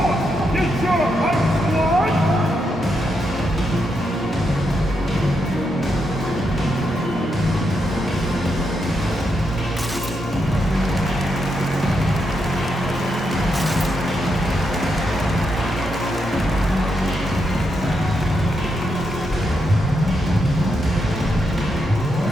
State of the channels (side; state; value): both; normal; correlation 0.82